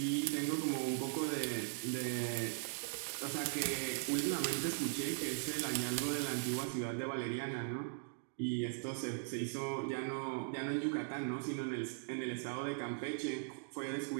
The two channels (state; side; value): silent; left; digital silence